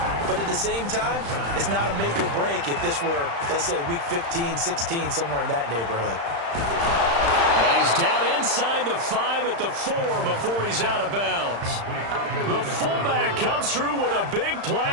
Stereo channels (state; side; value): late; left; 35 ms